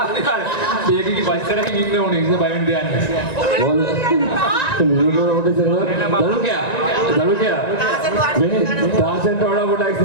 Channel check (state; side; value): late; right; 1.9 ms